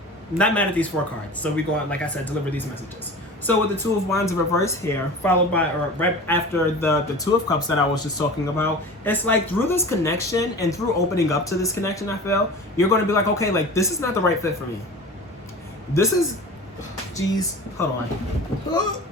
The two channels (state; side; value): normal; both; correlation 0.36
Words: Not mad at these 4 cards. So we go on, like I said, deliver these messages. So with the Two of Wands in reverse here, followed by, or right after the Two of Cups that I was just talking about, it's like through this connection and through opening up to this connection, I feel, you're going to be like, okay, like this is not the right fit for me. This is, geez, hold